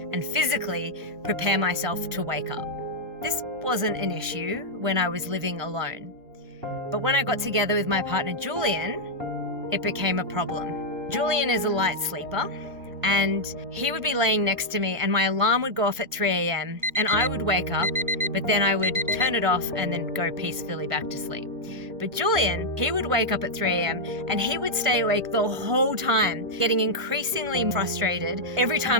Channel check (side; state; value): left; late; 1.5 ms